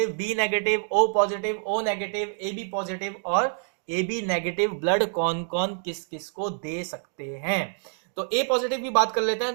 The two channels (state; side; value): silent; left; 57 dB below the other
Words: B negative, O positive, O negative, A B positive और ए बी नेगेटिव ब्लड कौन कौन किस किस को दे सकते हैं। तो ए पॉजिटिव की बात कर लेते